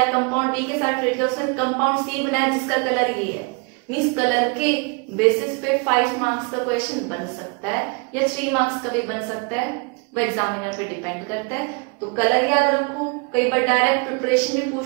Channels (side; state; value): left; quieter; 31.6 dB